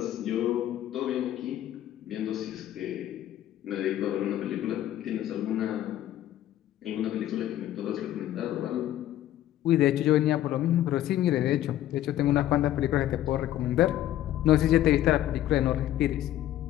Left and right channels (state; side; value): quieter; right; 13.0 dB